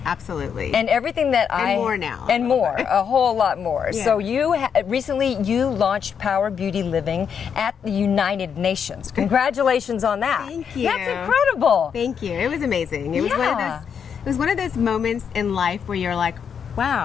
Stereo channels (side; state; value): right; quieter; 7.3 dB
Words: absolutely. And everything that And more now. And more, a whole lot more. Yeah. So recently you launched Power Beauty Living at the United Nations. Congratulations on that. Thank you. That's incredible. Thank you. It was amazing. It was one of those moments in life where you're like,